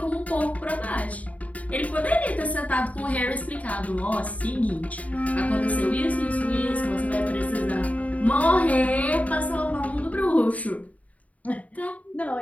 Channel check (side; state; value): right; late; 0.070 ms